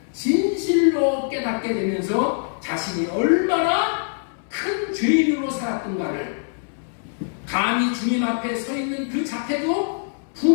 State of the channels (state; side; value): silent; right; 63 dB below the other